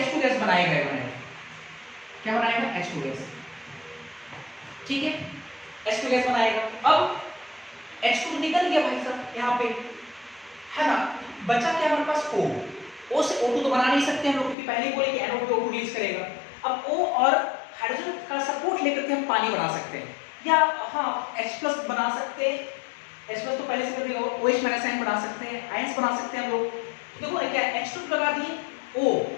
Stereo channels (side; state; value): right; drops out; at 14.6 s